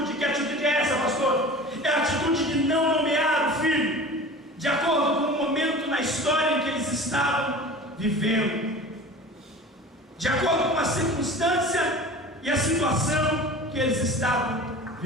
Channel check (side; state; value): both; normal; correlation 0.38